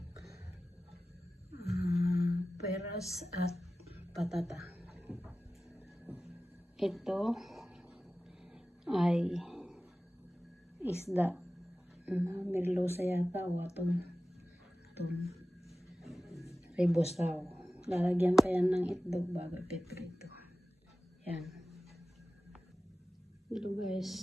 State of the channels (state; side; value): normal; both; correlation 0.95